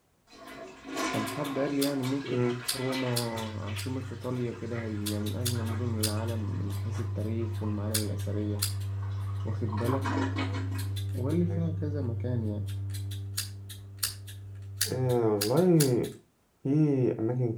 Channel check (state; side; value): identical; both; correlation 1.00